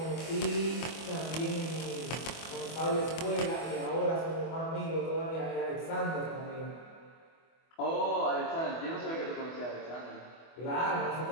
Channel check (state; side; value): late; right; 24 ms